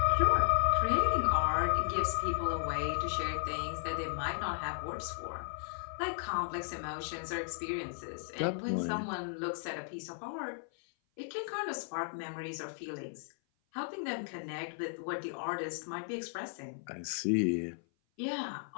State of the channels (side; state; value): right; silent; 54 dB below the other